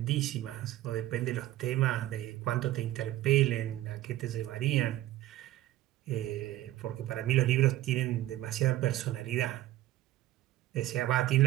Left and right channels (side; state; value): left; quieter; 15.0 dB